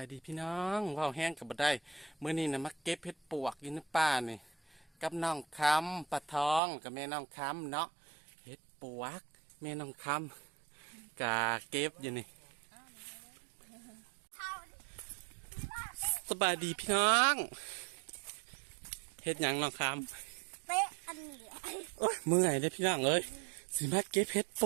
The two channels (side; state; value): left; drops out; at 6.6 s